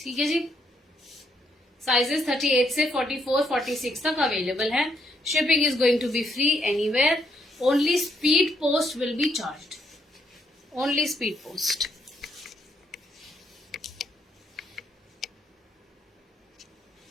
है जी। साइजेस 38 से 44, 46 तक अवेलेबल है। Shipping is going to be free anywhere. Only speed post will be charged. Only speed post.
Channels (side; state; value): both; normal; correlation 0.74